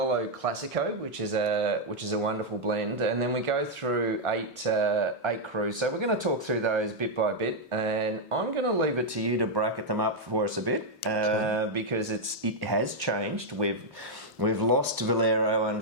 Classico, which is a wonderful blend, and then we go through eight crus. So we're going to talk through those bit by bit, and I'm going to leave it to you to bracket them up for us a bit because it has changed. We've lost Valero,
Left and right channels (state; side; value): normal; both; correlation -0.02